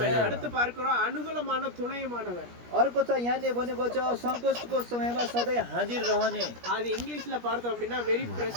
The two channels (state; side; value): late; left; 17 ms